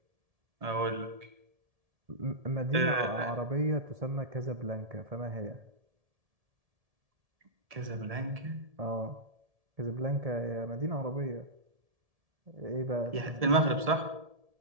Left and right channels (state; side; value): late; left; 1.7 ms